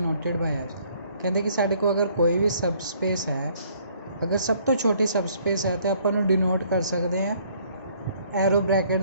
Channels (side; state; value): both; inverted; correlation -0.62